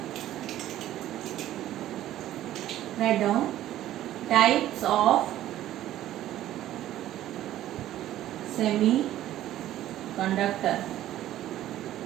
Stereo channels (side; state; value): left; quieter; 13.3 dB